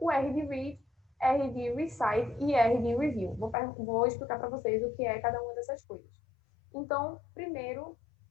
R de read, R de recite e R de review. Vou explicar para vocês o que é cada uma dessas coisas. Então, primeiro,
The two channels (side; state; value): right; drops out; at 3.6 s